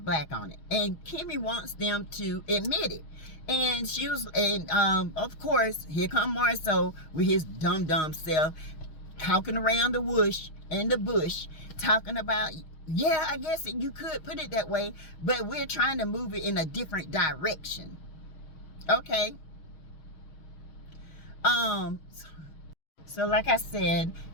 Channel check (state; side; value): late; right; 6.3 ms